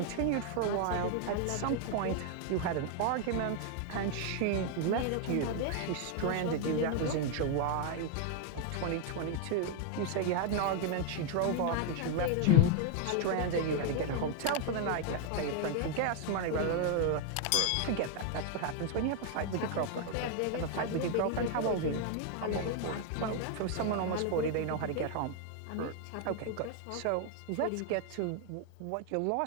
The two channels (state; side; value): different; both; correlation 0.01